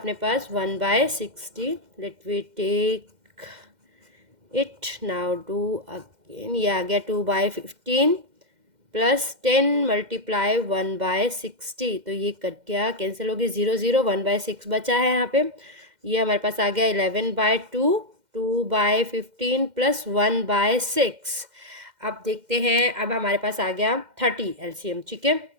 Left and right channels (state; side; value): late; left; 2.1 ms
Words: पास 1/60, let we take it now do again, ये आ गया 2/15 प्लस 10 मल्टीप्लाई 1/60, तो ये कट गया, कैंसिल हो गई, 0 0, 1/6 बचा है यहाँ पे। ये हमारे पास आ गया 11/2, 2/15 प्लस 1/6। अब देखते हैं, अब हमारे पास आ गया 30 एलसीएम, ठीक है।